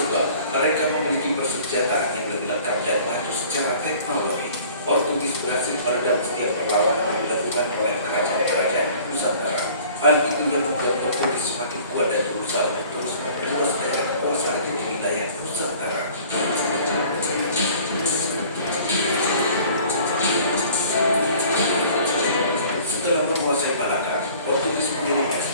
mereka memiliki persenjataan yang lebih lengkap dan maju secara teknologi. Portugis berhasil meredam setiap perlawanan yang dilakukan oleh kerajaan-kerajaan Nusantara. Hal itu yang membuat Portugis semakin kuat dan berusaha untuk terus memperluas daerah kekuasaannya di wilayah Nusantara. Setelah menguasai Malaka, Portugis mengirim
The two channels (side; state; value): both; inverted; correlation -0.50